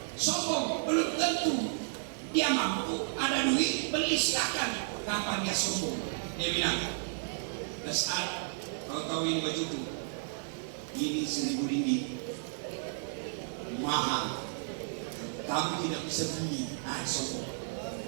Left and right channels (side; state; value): left; silent; digital silence